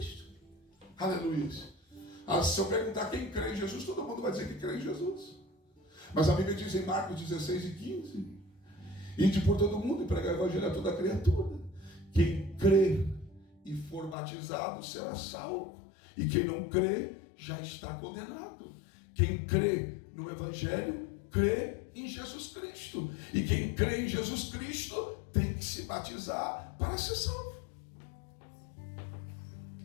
Aleluia. Se eu perguntar quem crê em Jesus, todo mundo vai dizer que crê em Jesus. Mas a Bíblia diz em Marcos 16 e 15: ide por todo mundo e pregar o evangelho a toda criatura. Quem crer e for batizado será salvo. E quem não crê já está condenado. Quem crê no evangelho, crê em Jesus Cristo. E quem crê em Jesus Cristo tem que se batizar para ser salvo.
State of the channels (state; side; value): drops out; right; at 14.2 s